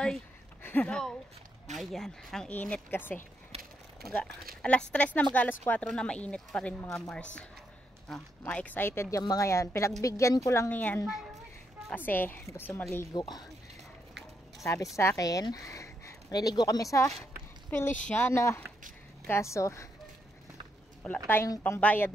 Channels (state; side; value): normal; both; correlation 0.79